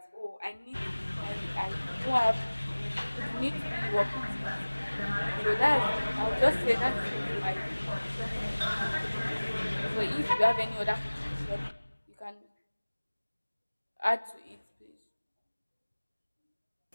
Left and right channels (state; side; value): inverted; both; correlation -1.00